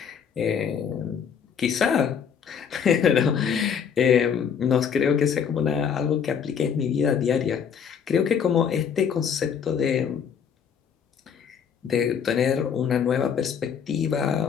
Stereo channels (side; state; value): right; quieter; 7.3 dB